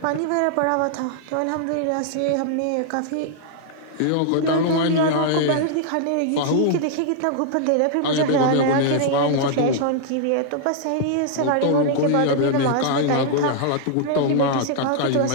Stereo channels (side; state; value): both; different; correlation -0.01